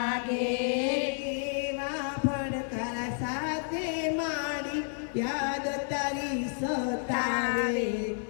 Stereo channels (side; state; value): right; silent; 57 dB below the other